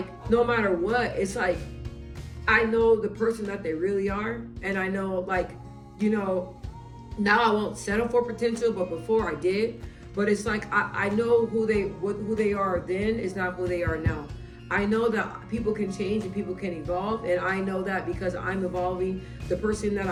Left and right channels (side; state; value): both; identical; correlation 1.00